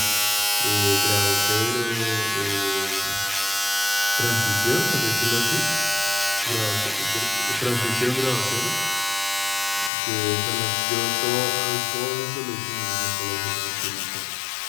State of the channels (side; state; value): right; drops out; at 9.9 s